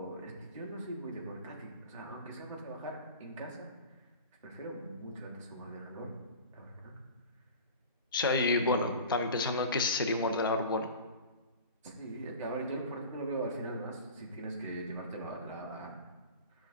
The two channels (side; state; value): both; inverted; correlation -0.37